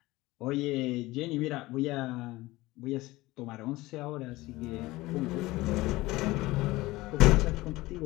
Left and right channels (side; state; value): right; quieter; 19.4 dB